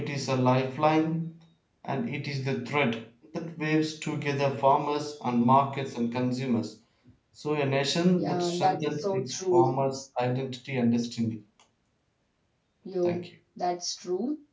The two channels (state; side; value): identical; both; correlation 1.00